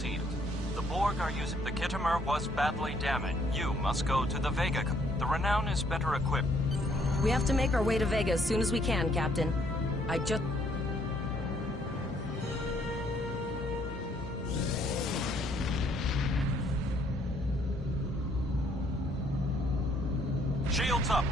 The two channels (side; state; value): both; normal; correlation 0.66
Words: it. The Borg are using... The Kittimer was badly damaged. You must go to the Vega. The Renown is better equipped. We have to make our way to Vega as soon as we can, Captain. I just... Shields up,